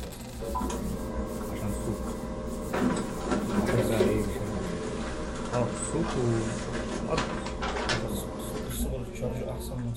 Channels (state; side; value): identical; both; correlation 1.00